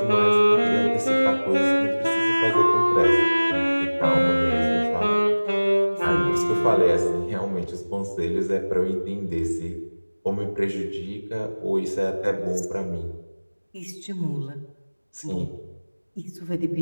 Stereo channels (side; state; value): both; inverted; correlation -1.00